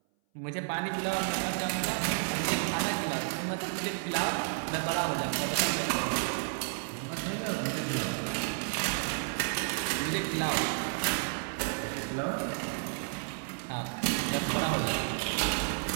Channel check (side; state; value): left; silent; 57 dB below the other